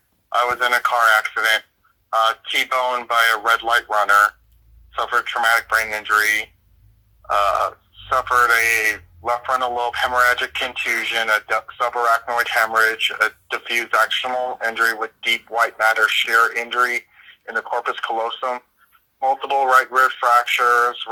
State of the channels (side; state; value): both; identical; correlation 1.00